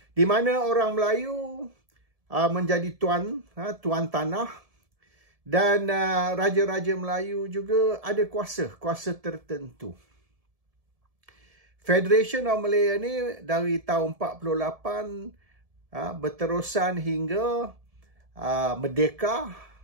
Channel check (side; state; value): left; late; 1.7 ms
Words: Di mana orang Melayu menjadi tuan tanah dan raja-raja Melayu juga ada kuasa tertentu. Federation of Malaya ni dari tahun 48 berterusan hingga merdeka